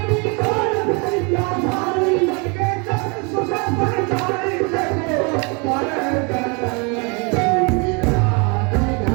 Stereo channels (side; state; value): left; quieter; 31.8 dB